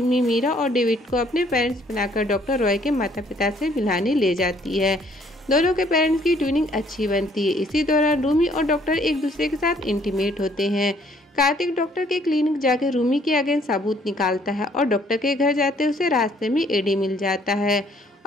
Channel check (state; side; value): normal; both; correlation 0.63